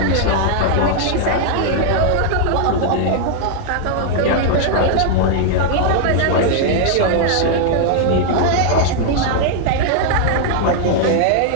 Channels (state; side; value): different; both; correlation -0.01